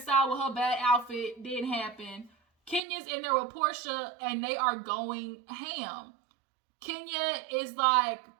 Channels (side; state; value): left; drops out; at 2.8 s